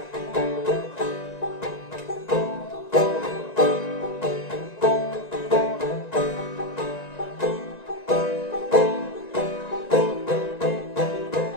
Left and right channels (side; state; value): right; late; 1.9 ms